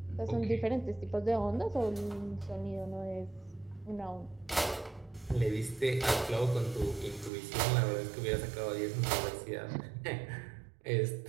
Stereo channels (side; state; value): left; drops out; at 7.3 s